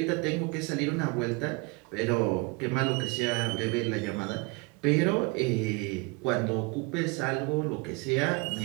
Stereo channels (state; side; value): quieter; left; 28.2 dB